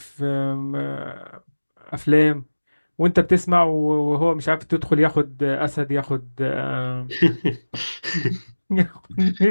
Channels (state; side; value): inverted; both; correlation -1.00